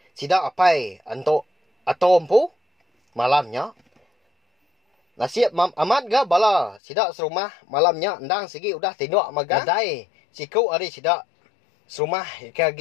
Sidak apai anto atom pu malamnya. Nasiap amat ga bala sidak serumah malamnya endang segi udah tindak magadai siku ari sidak serumah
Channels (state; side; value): drops out; right; at 6.8 s